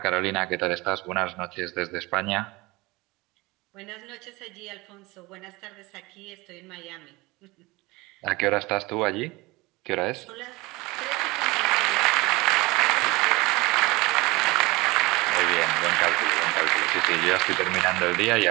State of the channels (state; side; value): quieter; left; 22.5 dB